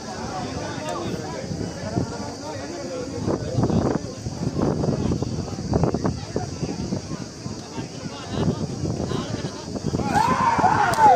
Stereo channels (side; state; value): both; identical; correlation 1.00